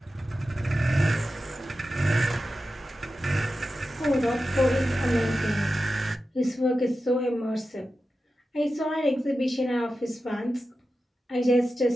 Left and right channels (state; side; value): normal; both; correlation 0.92